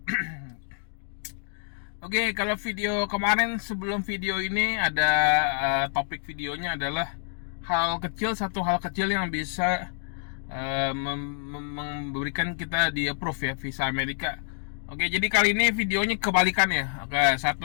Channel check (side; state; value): right; silent; digital silence